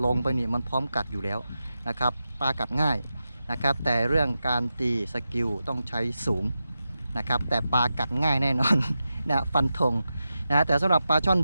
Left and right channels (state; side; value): inverted; both; correlation -0.90